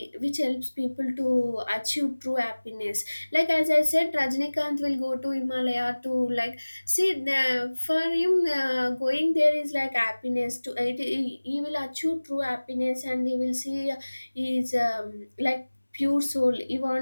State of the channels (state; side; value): inverted; both; correlation -1.00